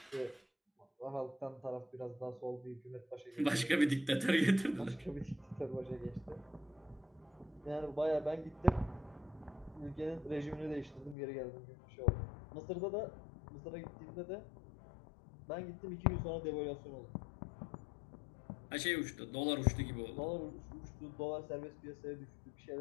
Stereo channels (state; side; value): drops out; right; at 11.2 s